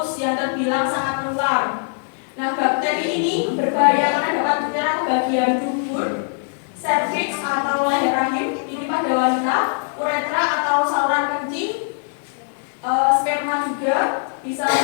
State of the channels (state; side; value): silent; right; 65 dB below the other